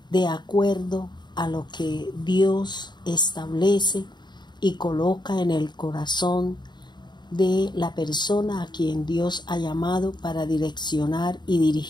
de acuerdo a lo que Dios establece y coloca en el corazón de la persona a quien Dios ha llamado para direccionar y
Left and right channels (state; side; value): late; right; 0.21 ms